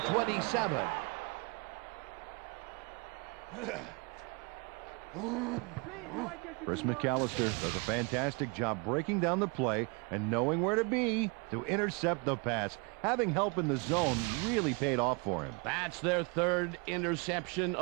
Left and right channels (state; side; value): quieter; left; 30.5 dB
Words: 27. Chris McAllister does a fantastic job breaking down the play and knowing where to be to intercept the pass. Having help in the zone really paid off for him. That's their third interception